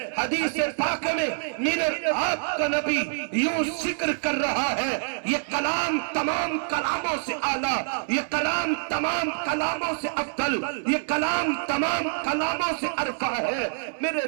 حدیث پاک میں میرے آپ کا نبی یوں ذکر کر رہا ہے یہ کلام تمام کلاموں سے اعلیٰ، یہ کلام تمام کلاموں سے افضل، یہ کلام تمام کلاموں سے ارفع ہے۔ میرے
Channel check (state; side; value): silent; left; 61 dB below the other